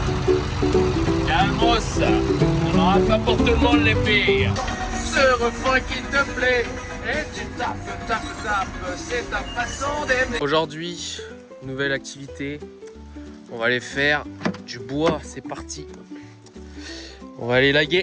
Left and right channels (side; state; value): both; identical; correlation 1.00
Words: Calmos, on n'aura pas pour tout le monde les pires. Ce refrain qui te plaît, et tu tapes, c'est ta façon d'aimer. Aujourd'hui, nouvelle activité. On va aller faire du bois, c'est parti. On va aller